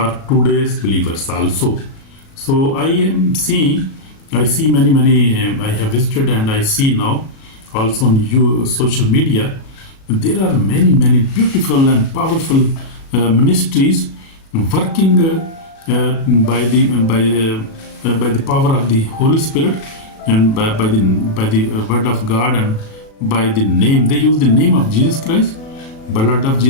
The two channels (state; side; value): late; right; 37 ms